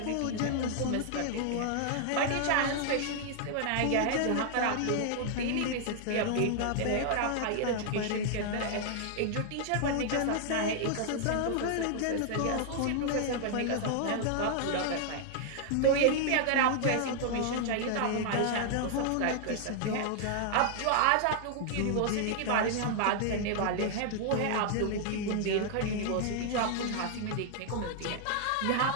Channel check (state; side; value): different; both; correlation 0.00